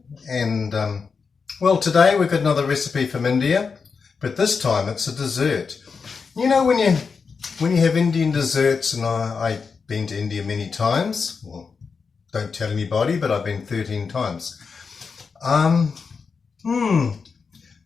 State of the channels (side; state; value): right; quieter; 5.3 dB